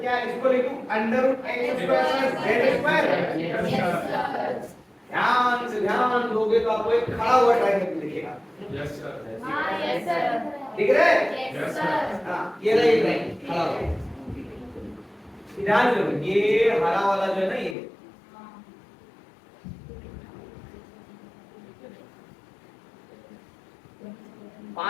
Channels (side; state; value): right; drops out; at 17.8 s